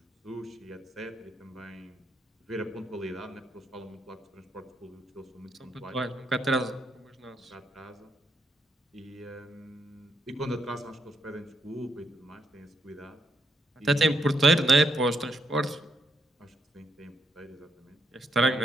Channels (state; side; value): normal; both; correlation 0.78